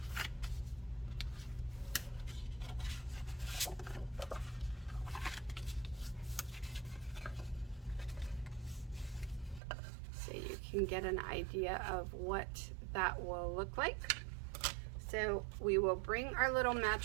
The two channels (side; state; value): left; drops out; at 9.6 s